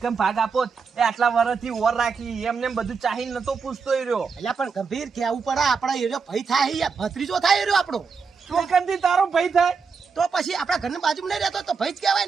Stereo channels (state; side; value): quieter; left; 5.4 dB